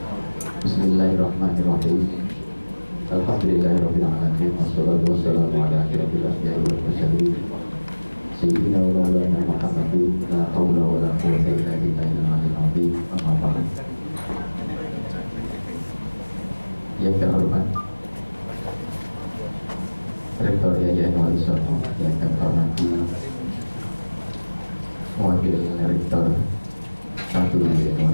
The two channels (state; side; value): inverted; both; correlation -1.00